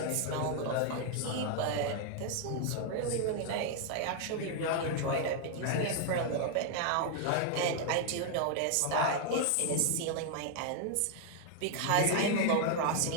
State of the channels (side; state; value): both; different; correlation 0.00